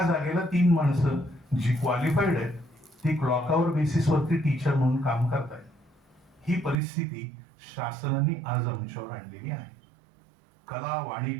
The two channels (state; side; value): drops out; left; at 6.8 s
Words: जागेला 3 माणसं जी क्वालिफाईड आहेत ती क्लॉकआवर बेसिस वरती टीचर म्हणून काम करतायत. ही परिस्थिती शासनाने आज आमच्यावर आणलेली आहे. कला,